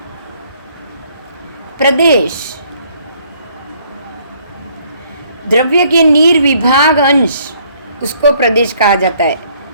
प्रदेश, द्रव्य के निर्विभाग अंश, उसको प्रदेश कहा जाता है,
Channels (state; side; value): inverted; both; correlation -0.64